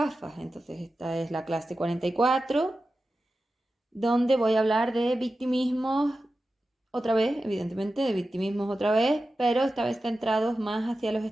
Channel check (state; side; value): normal; both; correlation 0.93